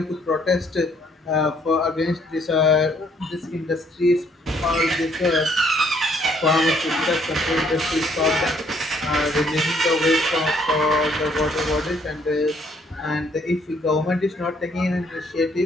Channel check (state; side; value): normal; both; correlation 0.66